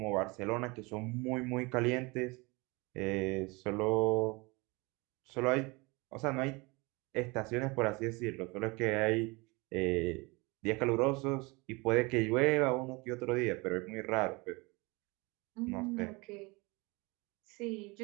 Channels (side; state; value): left; quieter; 26.0 dB